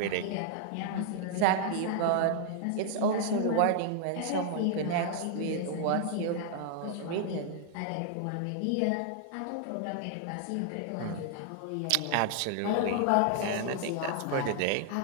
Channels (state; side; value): different; both; correlation -0.01